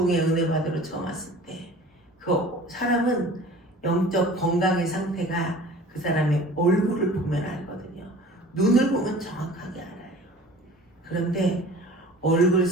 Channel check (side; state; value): both; normal; correlation 0.44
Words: 은혜 받으러 처음 왔을 때 그 사람은 영적 건강의 상태가 그 사람의 얼굴을 보면 알거든요. 눈을 보면 정확하게 알아요. 그런데 얼굴